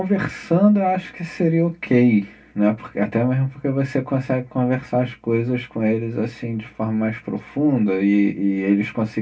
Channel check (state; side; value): identical; both; correlation 1.00